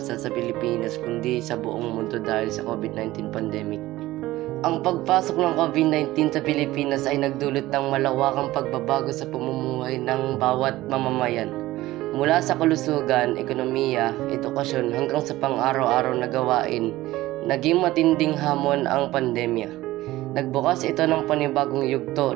sa Pilipinas kundi sa buong mundo dahil sa COVID-19 pandemic. Ang pagpasok ng COVID-19 sa Pilipinas ay nagdulot ng malawakang pagbabago sa pamumuhay ng bawat mamamayan. Mula sa kalusugan, ekonomiya, edukasyon hanggang sa pang-araw-araw na gawain, naging matinding hamon ang pandemya. Nagbukas ito ng panibagong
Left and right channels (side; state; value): left; quieter; 17.1 dB